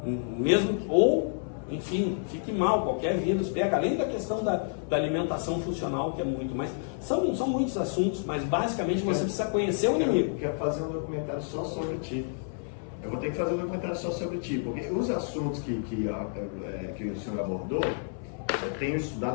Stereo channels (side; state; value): right; silent; 58 dB below the other